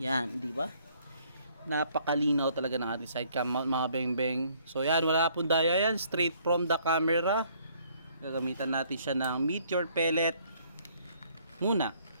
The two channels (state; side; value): inverted; both; correlation -0.63